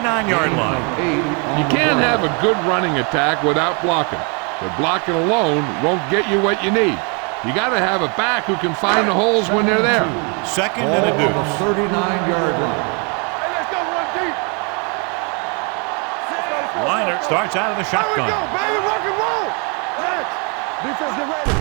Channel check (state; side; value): quieter; left; 34.7 dB